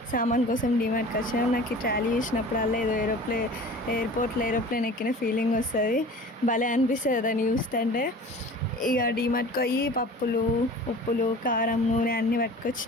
సామాన్ కోసం డిమార్ట్కి వచ్చినాం. నాకు ఈ ట్రాలీ చూసినప్పుడల్లా ఏదో ఎయిర్పోర్ట్లో ఏరోప్లేన్ ఎక్కిన ఫీలింగ్ వస్తుంది. భలే అనిపిస్తుంది దాన్ని చూస్తుంటే. ఇక డిమార్ట్కి పోయి పప్పులు, ఉప్పులు, కారం, నూనె అన్నీ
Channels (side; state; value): both; normal; correlation 0.41